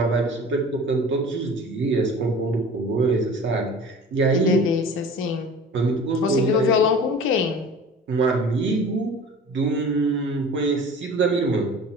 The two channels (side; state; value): both; normal; correlation 0.41